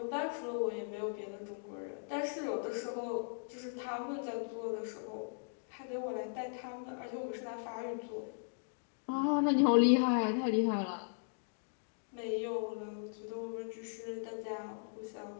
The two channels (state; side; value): silent; right; digital silence